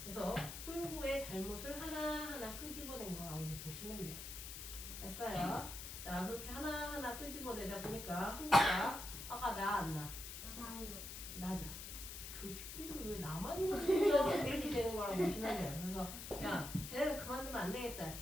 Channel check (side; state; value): left; noise; hiss, 9 dB below the sound